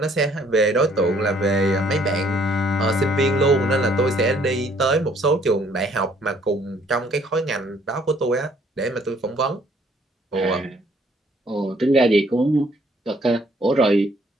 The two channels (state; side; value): normal; both; correlation 0.63